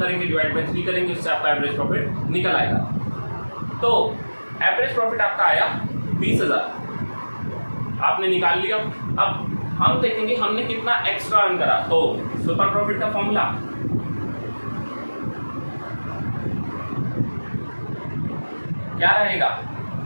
डिवाइड बाय 3 करेंगे, उससे आपका एवरेज प्रॉफिट निकल आएगा। तो एवरेज प्रॉफिट आपका आया 20,000 आपने निकाल लिया। अब हम देखेंगे हमने कितना एक्स्ट्रा अर्न करा। तो सुपर प्रॉफिट का फॉर्मूला क्या रहेगा,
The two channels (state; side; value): inverted; both; correlation -1.00